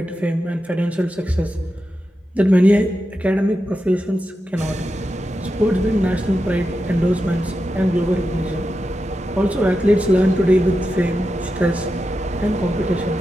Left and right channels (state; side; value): normal; both; correlation 0.89